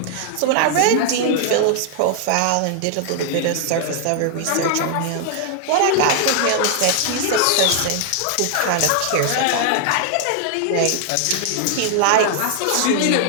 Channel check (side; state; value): both; different; correlation 0.00